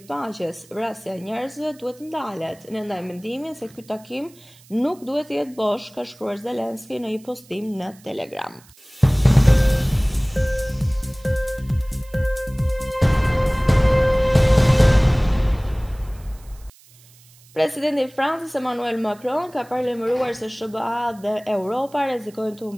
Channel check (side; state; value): right; noise; hiss, 26 dB below the sound